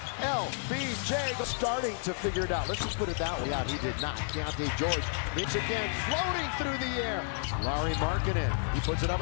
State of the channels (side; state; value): right; silent; 57 dB below the other